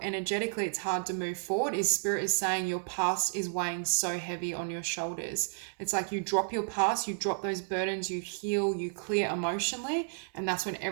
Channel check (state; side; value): silent; left; digital silence